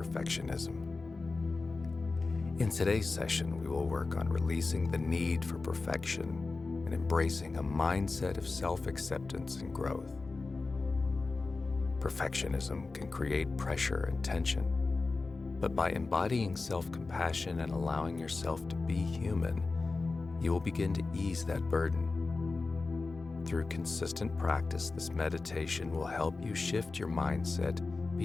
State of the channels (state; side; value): quieter; right; 3.8 dB